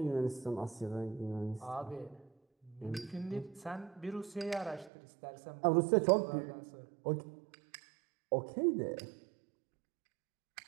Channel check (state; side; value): drops out; left; at 4.9 s